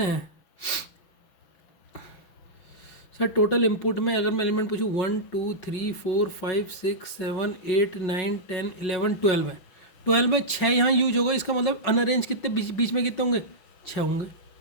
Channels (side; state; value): right; late; 5.9 ms